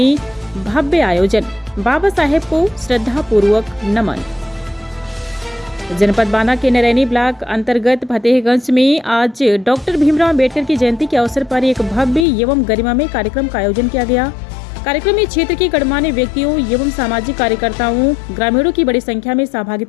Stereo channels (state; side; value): drops out; right; at 12.2 s